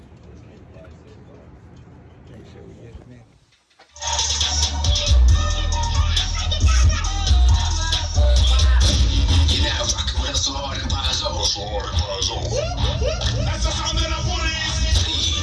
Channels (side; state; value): both; identical; correlation 1.00